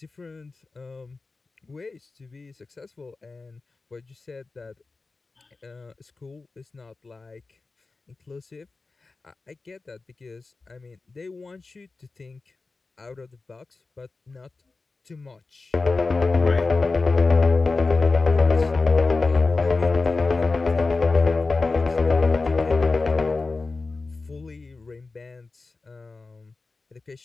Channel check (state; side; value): quieter; right; 3.8 dB